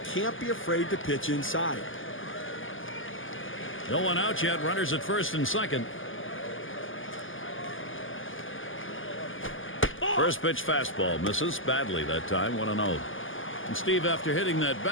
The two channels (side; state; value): right; late; 0.58 ms